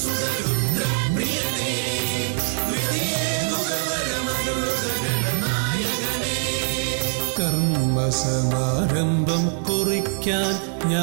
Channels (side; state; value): left; silent; 58 dB below the other